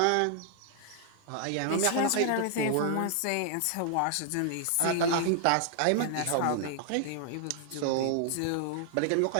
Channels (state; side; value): different; both; correlation 0.00